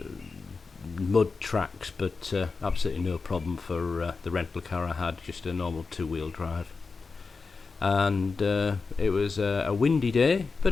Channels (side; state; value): right; quieter; 4.5 dB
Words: mud tracks, but absolutely no problem for the rental car I had, just a normal 2-wheel drive. And it was a windy day, but